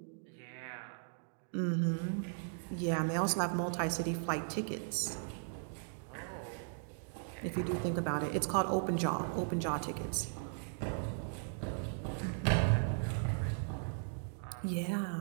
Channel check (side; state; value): left; silent; digital silence